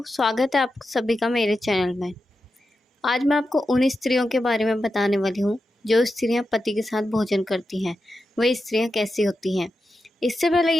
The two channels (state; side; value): normal; both; correlation 0.90